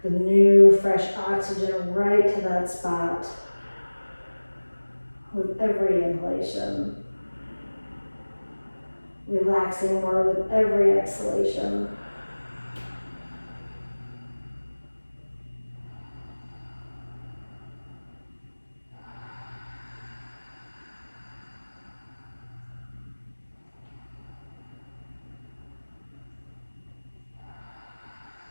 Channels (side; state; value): both; inverted; correlation -1.00